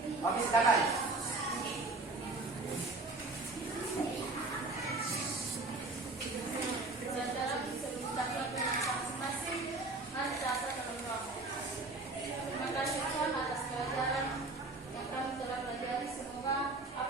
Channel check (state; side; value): quieter; left; 3.2 dB